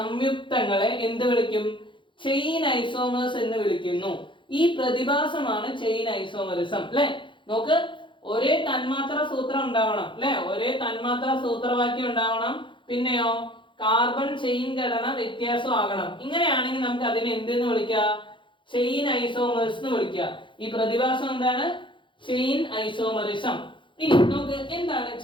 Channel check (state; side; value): late; right; 0.24 ms